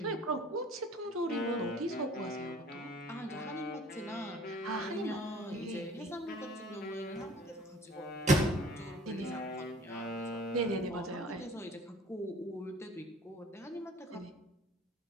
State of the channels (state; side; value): normal; both; correlation 0.50